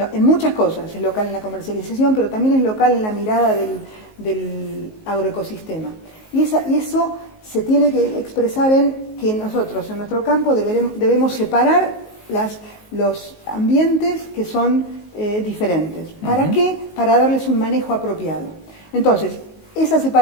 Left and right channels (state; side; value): late; right; 19 ms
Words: en muchas cosas, es local en la comercialización, pero también es local en la mirada del agroecosistema. Y eso se tiene que expresar en que nosotros, en nuestro campo, debemos separar los ambientes que son diferentes. ¿Para qué? Para darles un manejo apropiado. Entonces, esa